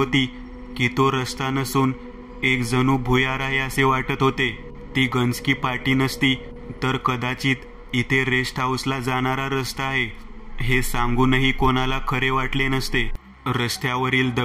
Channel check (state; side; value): identical; both; correlation 1.00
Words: की तो रस्ता नसून एक जणू भुयार आहे असे वाटत होते. ती गंजकी पाटी नसती तर कदाचित इथे रेस्ट हाऊसला जाणारा रस्ता आहे हे सांगूनही कोणाला खरे वाटले नसते. रस्त्यावरील